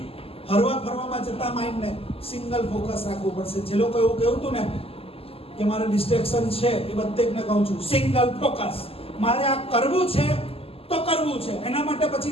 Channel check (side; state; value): right; late; 0.28 ms